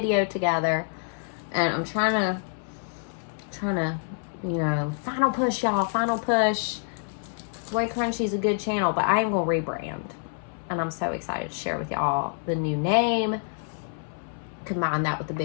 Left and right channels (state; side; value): silent; right; 60 dB below the other